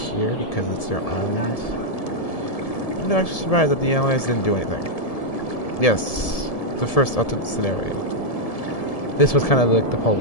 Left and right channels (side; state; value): right; late; 1.7 ms